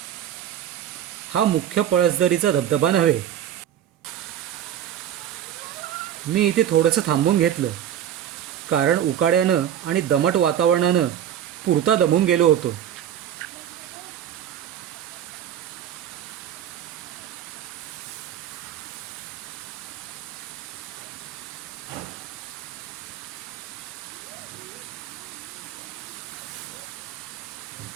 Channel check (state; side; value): quieter; left; 10.4 dB